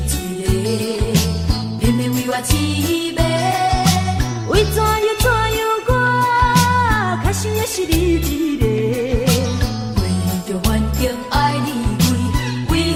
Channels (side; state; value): both; identical; correlation 1.00